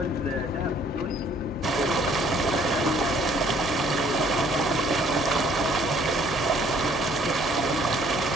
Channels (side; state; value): both; normal; correlation 0.60